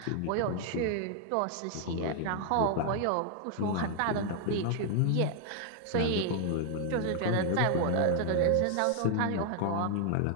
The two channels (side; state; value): both; different; correlation 0.00